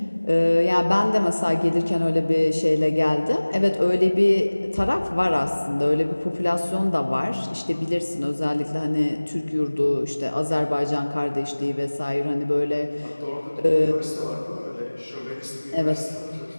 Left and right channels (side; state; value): both; inverted; correlation -1.00